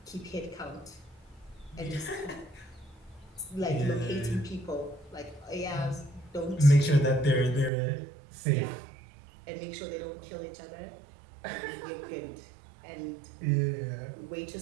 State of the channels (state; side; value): drops out; left; at 7.7 s